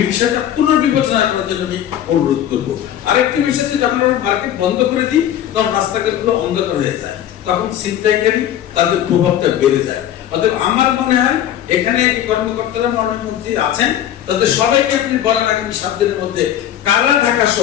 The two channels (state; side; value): quieter; right; 11.1 dB